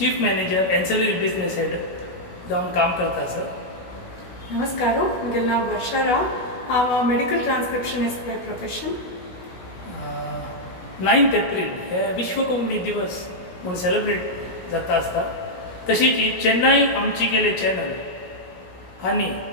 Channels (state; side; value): late; right; 16 ms